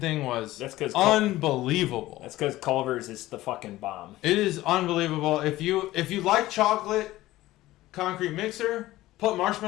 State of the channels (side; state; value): right; quieter; 16.7 dB